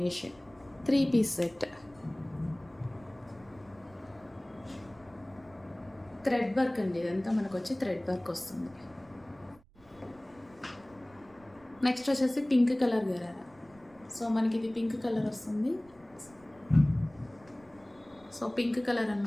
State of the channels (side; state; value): right; noise; rumble, 28 dB below the sound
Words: 3 piece set. Thread work అండి, ఇదంతా మనకు వచ్చి థ్రెడ్ వర్క్ వస్తుంది. నెక్స్ట్ వచ్చేసి పింక్ కలర్ గరారా. సో మనకి ఇది పింక్ కలర్ వస్తుంది. సో పింక్ కలర్